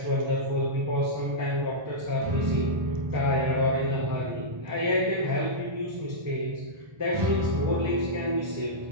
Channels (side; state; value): left; late; 1.3 ms